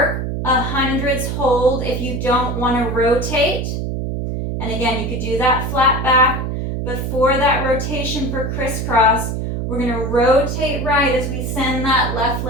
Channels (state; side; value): noise; right; hum, 3 dB below the sound